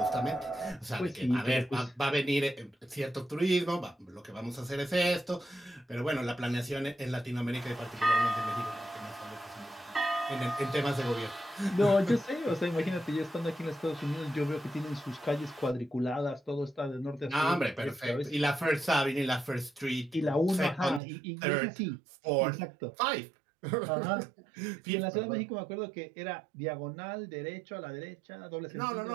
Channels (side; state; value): left; drops out; at 21.0 s